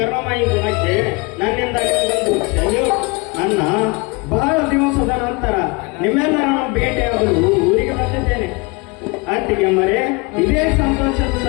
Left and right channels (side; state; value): right; quieter; 27.6 dB